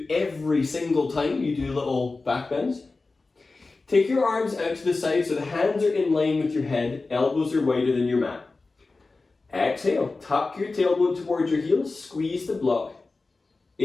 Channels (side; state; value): right; quieter; 3.7 dB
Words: every single time you do little back bends. Take your arms out to the side so the hands are in line with your head, elbows are wider than your mat. Exhale, tuck your tailbone towards your heels, squeeze the block.